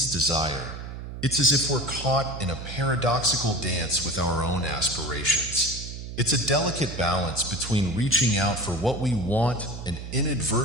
desire, it's as if we're caught in a paradoxical dance with our own aspirations. It's a delicate balance between reaching out for what we want and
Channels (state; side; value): noise; right; hum, 9 dB below the sound